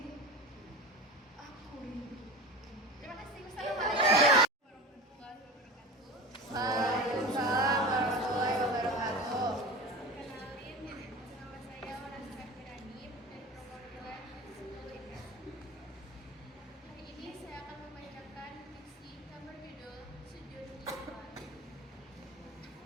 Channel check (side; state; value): both; normal; correlation 0.31